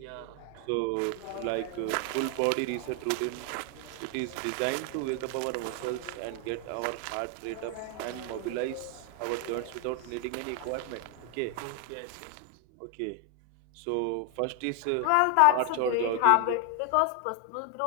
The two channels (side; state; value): both; different; correlation 0.00